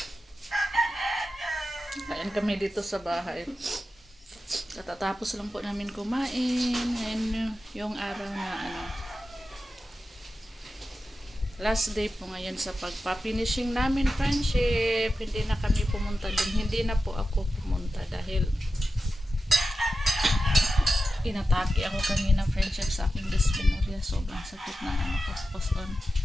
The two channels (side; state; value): both; normal; correlation 0.92